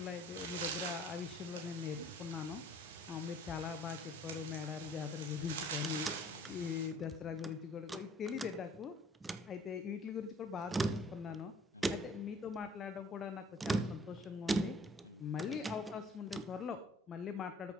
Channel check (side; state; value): both; normal; correlation 0.56